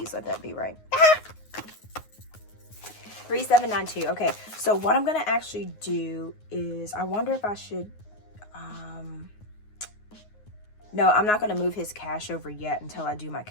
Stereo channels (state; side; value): late; right; 9.5 ms